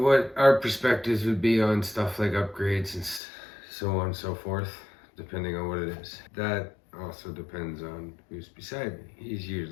our perspectives would be on stuff like upgrades and so on and so forth, depending on what it is. That also depends on who's beside me. He's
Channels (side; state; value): right; drops out; at 3.2 s